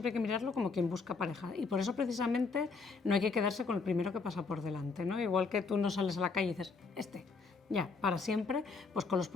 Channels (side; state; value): right; quieter; 4.5 dB